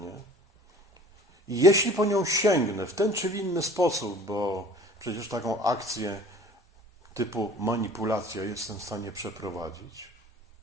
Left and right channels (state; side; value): normal; both; correlation 0.47